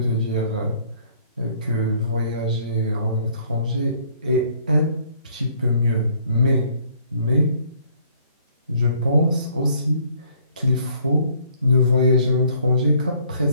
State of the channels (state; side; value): inverted; both; correlation -0.61